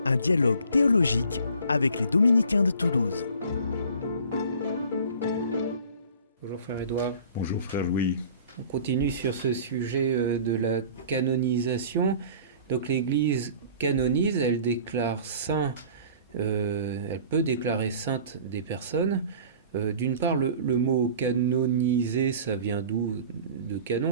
un dialogue théologique avec les dominicains de Toulouse. Bonjour frère Édouard. Bonjour frère Louis. On continue sur ce sujet de la canonisation. Donc l'Église canonise, elle déclare saint, elle peut déclarer sainte des personnes. D'une part, le mot canoniser, ça vient d'où? De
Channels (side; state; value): both; inverted; correlation -0.46